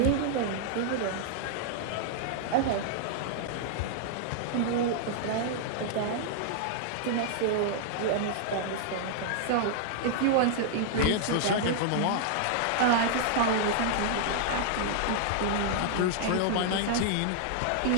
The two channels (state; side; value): different; both; correlation -0.01